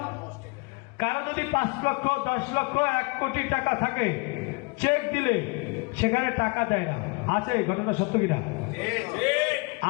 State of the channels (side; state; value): right; quieter; 29.6 dB